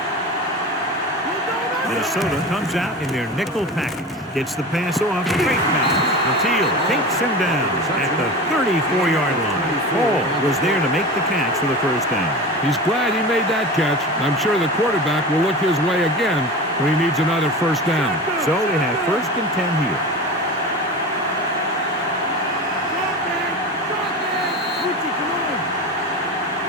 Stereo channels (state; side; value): normal; both; correlation 0.30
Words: Minnesota comes out in their nickel package. Gets the pass off. Great pass. Mathiel takes him down at the 34-yard line. Hall was there to make the catch for the first down. He's glad he made that catch. I'm sure the quarterback will look his way again when he needs another first down. So they have first and 10 here.